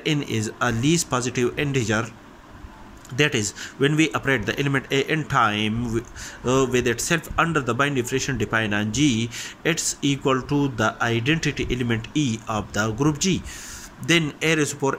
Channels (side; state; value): both; identical; correlation 1.00